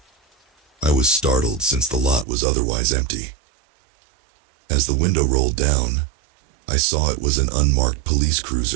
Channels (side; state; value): left; drops out; at 2.2 s